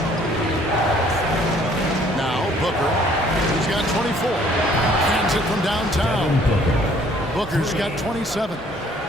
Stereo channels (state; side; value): normal; both; correlation 0.59